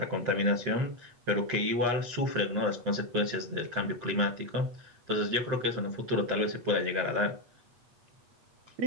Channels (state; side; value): late; left; 8.3 ms